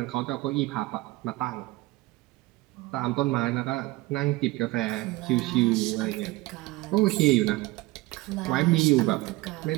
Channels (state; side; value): quieter; left; 20.4 dB